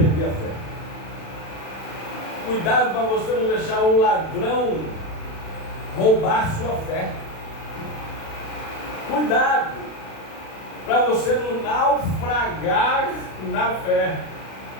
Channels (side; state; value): right; late; 36 ms